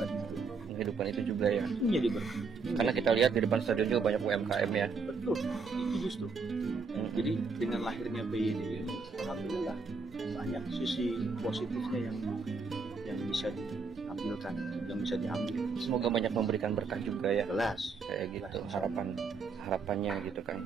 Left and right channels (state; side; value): quieter; left; 4.6 dB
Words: itu juga ya. Menjadi berkah. Karena kita lihat di depan stadion juga banyak UMKM ya. Betul, itu justru. Jadi dengan lahirnya PYD, alhamdulillah banyak sisi positifnya yang bisa diambilkan, yang bisa diambil. Semoga banyak memberikan berkah juga ya. Jelas, kayak gitu harapannya gitu kan.